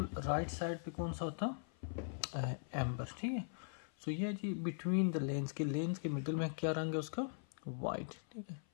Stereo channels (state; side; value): silent; right; 51 dB below the other